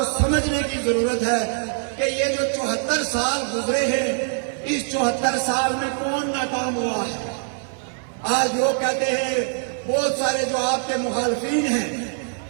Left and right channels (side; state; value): left; silent; 63 dB below the other